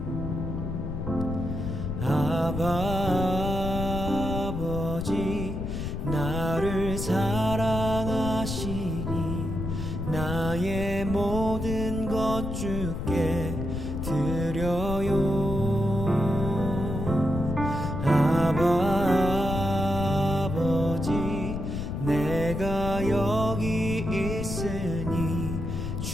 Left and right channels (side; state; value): left; noise; rumble, 4 dB below the sound